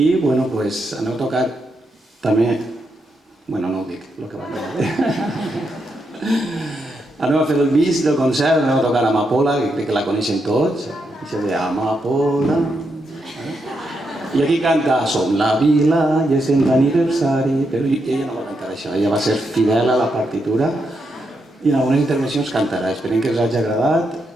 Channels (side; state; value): both; normal; correlation 0.82